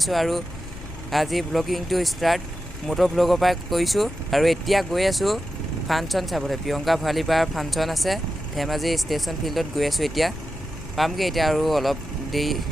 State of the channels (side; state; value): both; normal; correlation 0.91